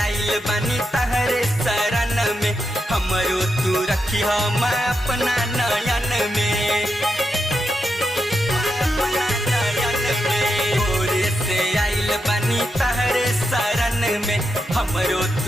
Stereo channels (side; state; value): both; normal; correlation 0.85